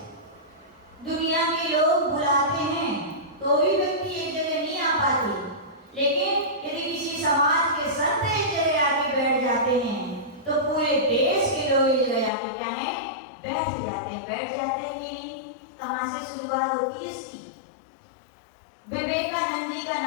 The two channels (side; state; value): right; drops out; at 12.3 s